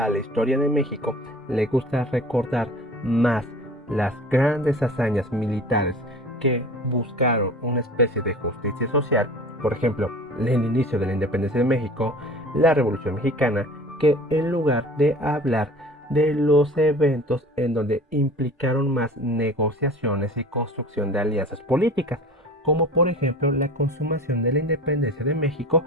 la historia de México le gusta recordar más las grandes hazañas militares que buscaron una especie de justicia social, por ejemplo, el inicio de la independencia de México, la Revolución Mexicana, que en lugar de hablar de los eventos en donde implicaron más negociaciones y construcción de alianzas políticas, como por ejemplo la consumación de la independencia de México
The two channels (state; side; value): normal; both; correlation 0.41